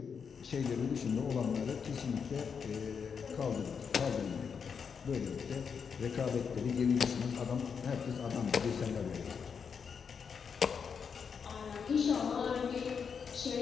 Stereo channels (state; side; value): quieter; right; 6.4 dB